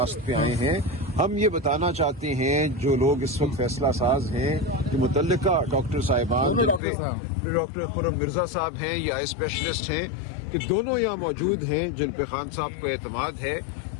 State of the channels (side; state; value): right; drops out; at 6.8 s